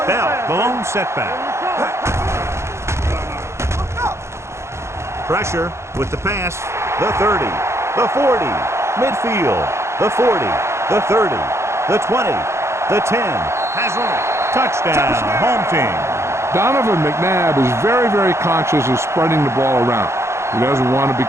Bell, the lone setback. Pressure with the pass. The 30, the 40, midfield, the 40, the 30, the 20, the 10. Has one. Touchdown, home team. Donovan McNabb is very, very conscious of spreading the ball around. He doesn't want to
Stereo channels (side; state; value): left; late; 0.13 ms